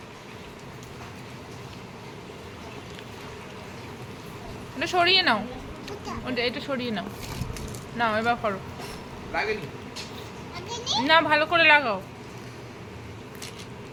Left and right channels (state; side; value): identical; both; correlation 1.00